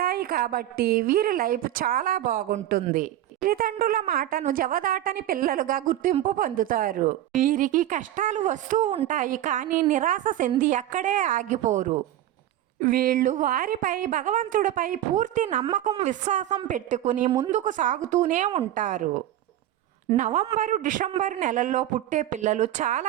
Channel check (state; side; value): quieter; left; 12.9 dB